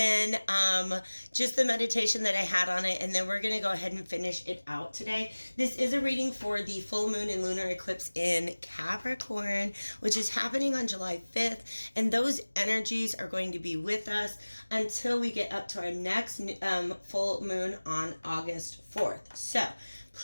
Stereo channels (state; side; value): inverted; both; correlation -1.00